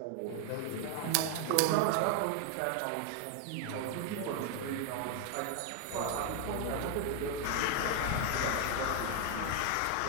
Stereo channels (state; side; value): different; both; correlation 0.01